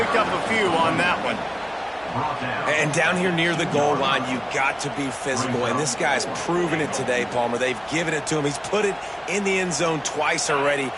up a few on that one. And down here near the goal line, you got to be physical. And this guy's proven it today, Palmer. They've given it to him. He's put it in the end zone twice already.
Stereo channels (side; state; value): both; identical; correlation 1.00